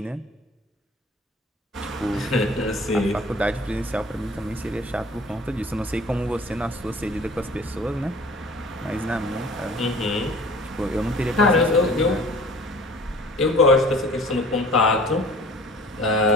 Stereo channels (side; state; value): both; normal; correlation 0.48